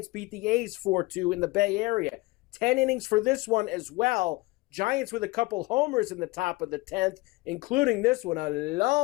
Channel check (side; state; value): right; quieter; 22.3 dB